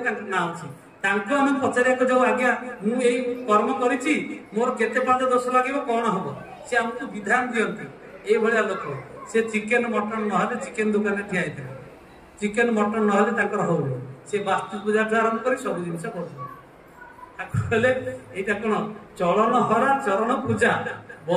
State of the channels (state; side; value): identical; both; correlation 1.00